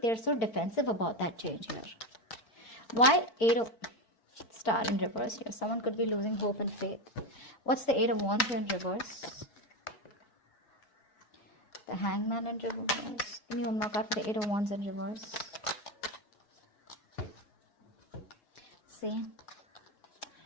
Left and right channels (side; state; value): right; late; 4.5 ms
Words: so defensive about that change here. Why 8 of Star in reverse here? Someone could be losing hope and faith. What's the 8 of Wands here in reverse? The Hangman in reverse. Give me one more card for the 8 of Wands in reverse. See,